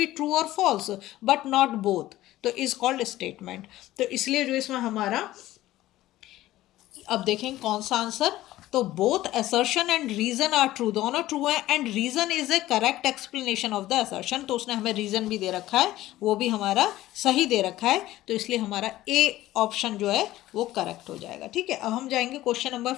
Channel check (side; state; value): right; quieter; 15.6 dB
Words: ट्रू और फॉल्स बट नॉट बोथ, तो इज कॉल्ड स्टेटमेंट। तो इसलिए जो इसमें हमारा, अब देखें कौन सा आंसर तो both assertion and reason are true, दोनों ट्रू है, and reason is a correct explanation of the assertion, तो उसने हमें रीजन भी दे रखा है, वो भी हमारा सही दे रखा है, तो इसलिए हमारा ए ऑप्शन जो है वो करेक्ट हो जाएगा। ठीक है, अब हम जाएंगे क्वेश्चन नंबर